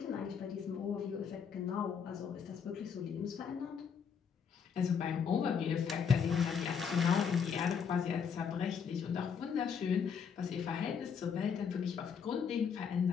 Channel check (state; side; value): quieter; right; 6.8 dB